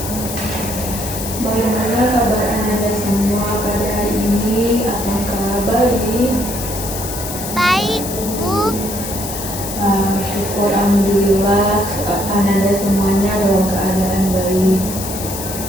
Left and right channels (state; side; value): noise; left; hiss, 8 dB below the sound